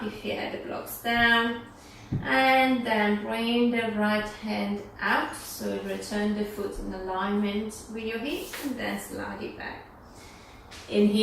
if you had the blocks down, and then bring the right hand out, so return the foot in alignment with your hips and then slide it back. In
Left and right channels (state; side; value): identical; both; correlation 1.00